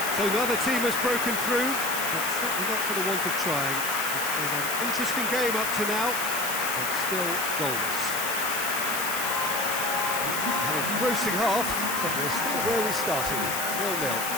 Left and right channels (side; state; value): left; noise; hiss, 3 dB below the sound